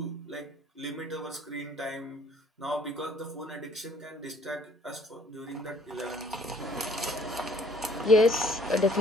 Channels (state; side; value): normal; both; correlation 0.59